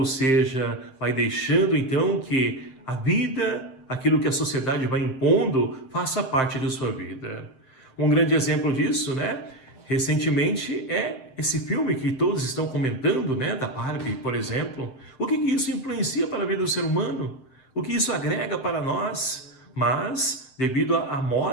seja, vai deixando então que a vida, aquilo que a sociedade vai impondo, faça parte de sua vida. Um grande exemplo disso, né? Recentemente é esse filme que todos estão comentando, né? Da Barbie, por exemplo. O que isso influencia para a vida do ser humano? O que isso agrega para nós? Mas, devido à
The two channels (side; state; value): right; late; 7.7 ms